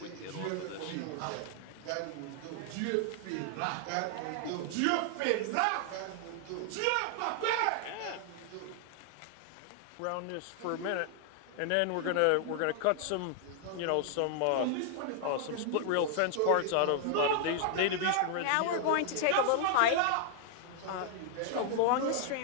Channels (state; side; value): different; both; correlation 0.00